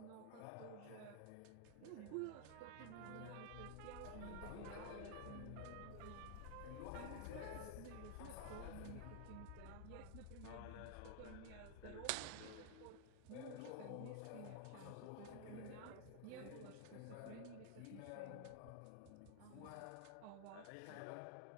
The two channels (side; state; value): both; different; correlation 0.00